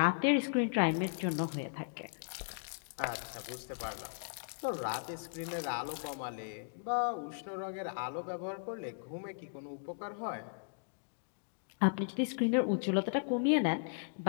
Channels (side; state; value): right; silent; digital silence